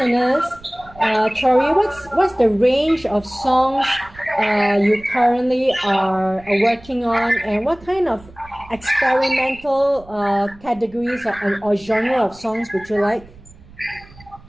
Tori, what's the range of songs you currently are working on, and what kind of experimental categories or genre of songs would you like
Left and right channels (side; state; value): right; noise; rumble, 23 dB below the sound